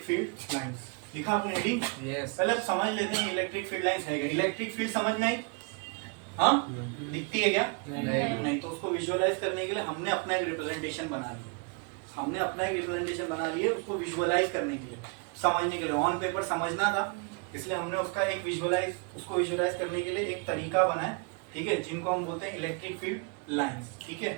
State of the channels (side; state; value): left; quieter; 33.5 dB